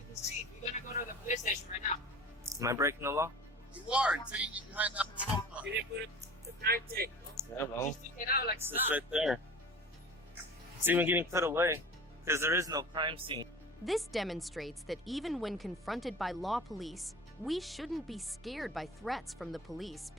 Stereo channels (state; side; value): normal; both; correlation 0.39